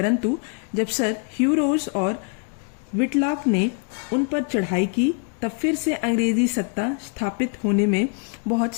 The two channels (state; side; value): quieter; right; 38.7 dB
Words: जब सर ह्यूरोज और विटलॉक ने उन पर चढ़ाई की, तब फिर से अंग्रेजी सत्ता स्थापित होने में बहुत